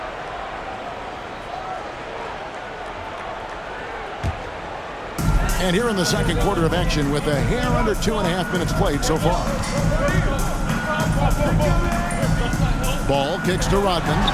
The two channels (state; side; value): identical; both; correlation 1.00